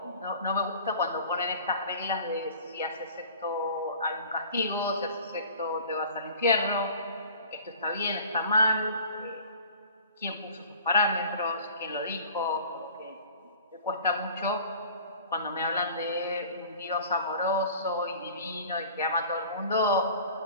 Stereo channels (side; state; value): both; inverted; correlation -0.45